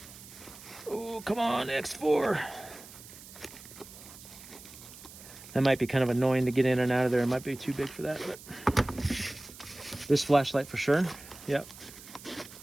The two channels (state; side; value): noise; right; hiss, 17 dB below the sound